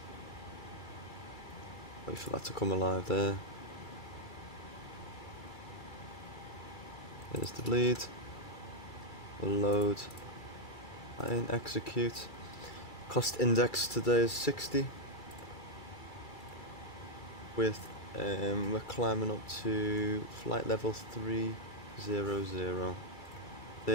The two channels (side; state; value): right; late; 2.3 ms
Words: Wait for that to come alive there. There's the bleed. We'll load. And execute. Cost index today is 60. With we're climbing up to flight level 300,